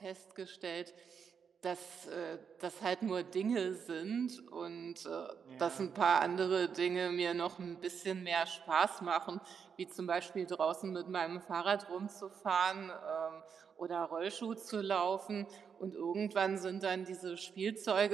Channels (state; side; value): quieter; left; 6.7 dB